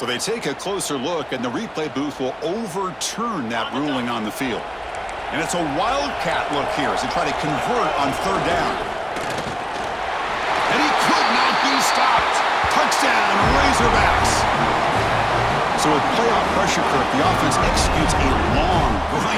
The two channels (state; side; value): identical; both; correlation 1.00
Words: they take a closer look, and the replay booth will overturn that ruling on the field. And it's a wildcat look here as they try to convert on 3rd down. And he could not be stopped. Touchdown, Razorbacks. So with playoff pressure curve, the offense executes a long,